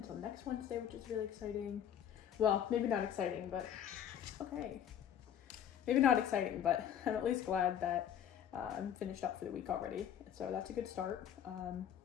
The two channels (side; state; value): right; quieter; 9.6 dB